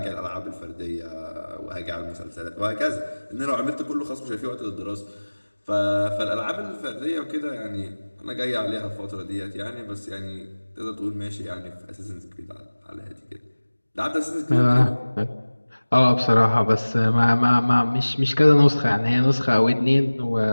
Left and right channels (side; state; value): both; inverted; correlation -1.00